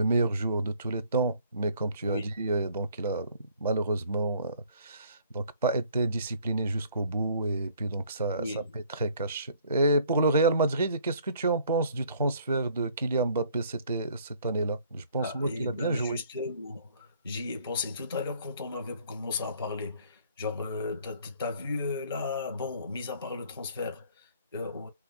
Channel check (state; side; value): inverted; both; correlation -0.59